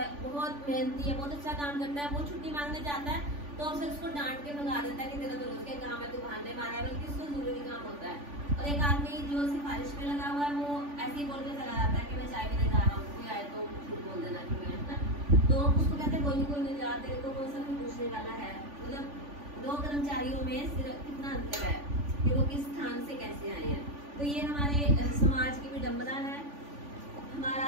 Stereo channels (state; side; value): late; left; 3.5 ms